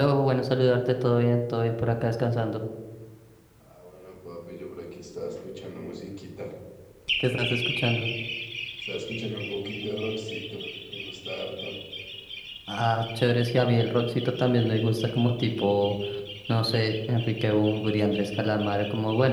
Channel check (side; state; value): both; identical; correlation 1.00